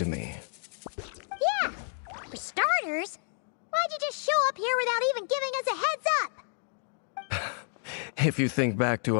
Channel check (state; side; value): silent; right; 58 dB below the other